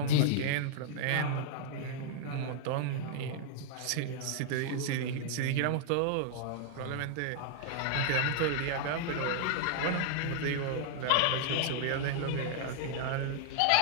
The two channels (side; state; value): both; different; correlation -0.01